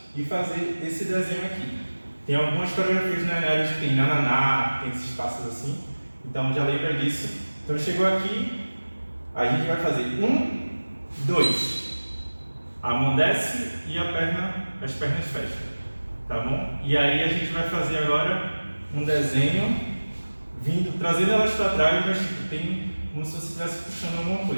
e fazer esse desenho aqui. Tem algumas coreografias na área que tem nananá, tem esses passos assim. Então já lembra disso. Então chegou aqui, a gente vai fazer 1, 2. A mão desce e as pernas fecham. Tá bom? E aí a gente vai fazer agora um desenho, trazendo elas para trás, mas tem como se você estivesse puxando alguma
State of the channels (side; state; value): both; inverted; correlation -1.00